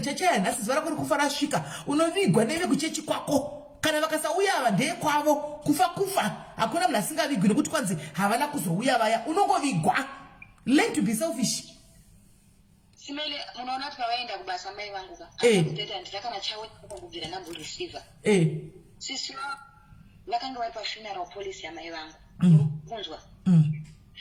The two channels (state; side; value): identical; both; correlation 1.00